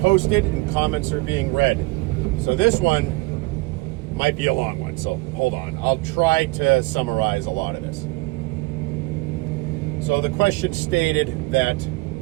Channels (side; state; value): left; quieter; 24.0 dB